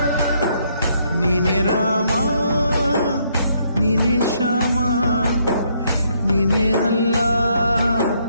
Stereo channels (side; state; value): both; inverted; correlation -0.71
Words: ನೀನೆ ರಾಮ ನೀನೆ ಶ್ಯಾಮ ನೀನೆ ಅಲ್ಲ